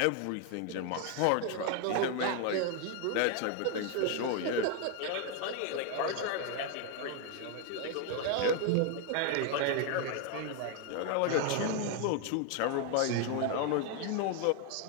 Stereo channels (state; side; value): different; both; correlation 0.01